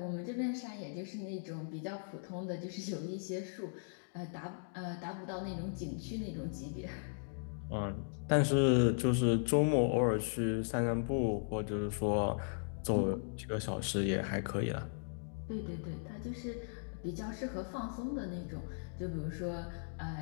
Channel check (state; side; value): silent; right; digital silence